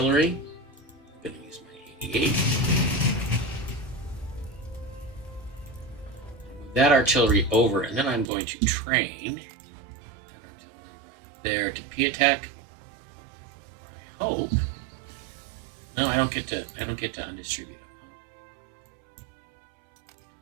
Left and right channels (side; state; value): left; drops out; at 8.2 s